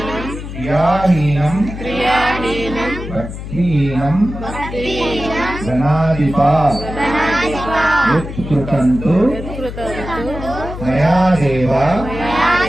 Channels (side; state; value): left; noise; hum, 9 dB below the sound